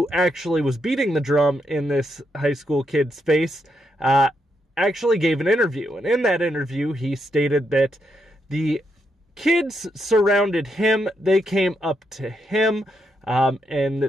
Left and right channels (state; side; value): normal; both; correlation 0.80